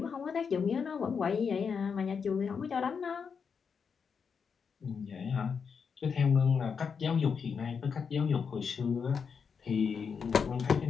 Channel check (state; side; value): quieter; right; 6.1 dB